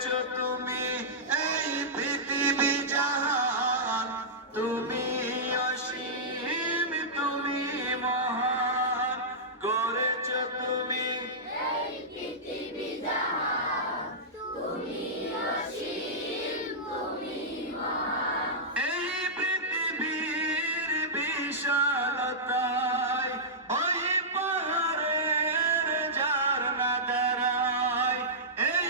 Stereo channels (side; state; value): both; normal; correlation -0.13